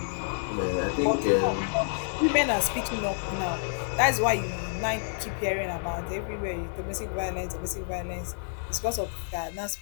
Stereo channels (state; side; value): silent; right; digital silence